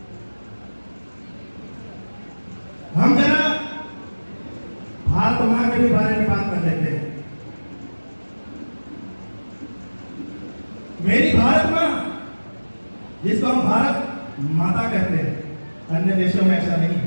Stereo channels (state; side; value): inverted; both; correlation -1.00